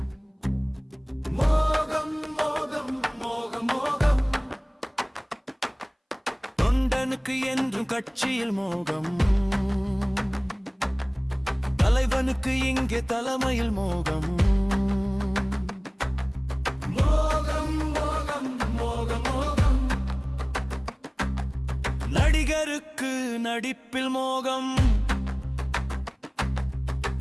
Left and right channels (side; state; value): both; identical; correlation 1.00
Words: மோகம் மோகம் மோகம் மோகம், தொண்டனுக்கு என்றும் கட்சியில் மோகம், தலைவனுக்கு இங்கே தலைமையில் மோகம். மோகம் மோகம் மோகம் மோகம், நடிகருக்கு நடிப்பில் மோகம்,